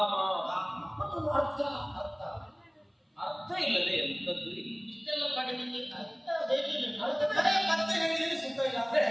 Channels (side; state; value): both; identical; correlation 1.00